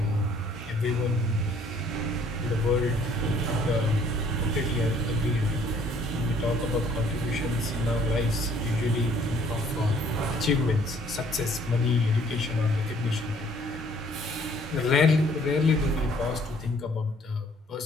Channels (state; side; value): normal; both; correlation 0.60